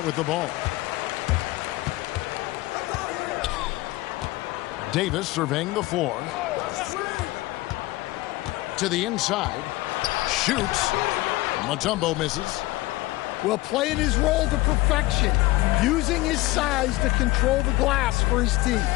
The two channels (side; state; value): right; quieter; 19.5 dB